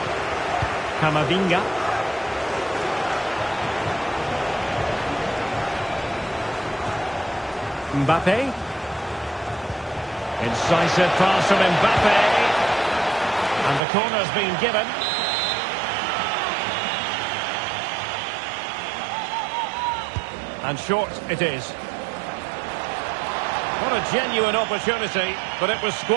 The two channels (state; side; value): drops out; left; at 13.8 s